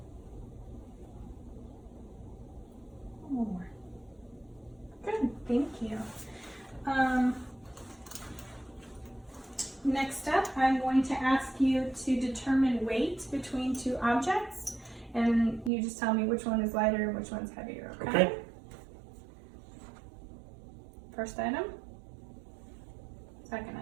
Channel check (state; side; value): drops out; left; at 15.7 s